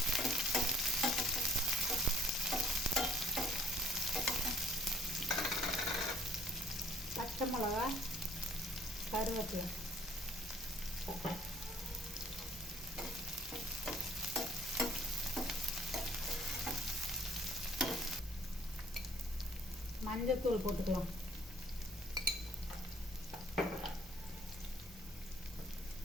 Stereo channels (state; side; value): normal; both; correlation 0.58